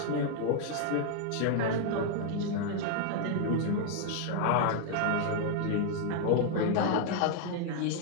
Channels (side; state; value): both; different; correlation 0.00